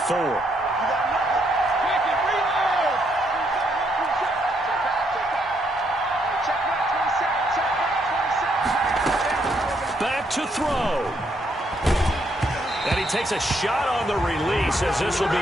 Back to throw. And he takes a shot on the release as this will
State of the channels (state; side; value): normal; both; correlation 0.74